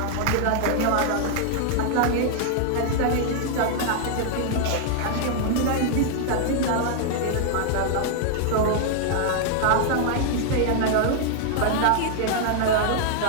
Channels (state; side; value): different; both; correlation -0.01